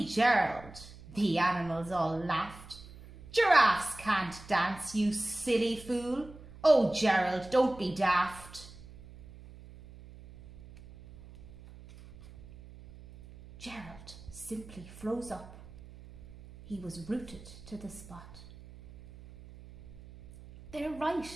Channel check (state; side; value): noise; right; hum, 18 dB below the sound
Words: Gerald!" The animals all laughed. "Giraffes can't dance, you silly fool. Oh, Gerald, don't be daft." Gerald simply froze up. He was rooted to the spot. "They're right,"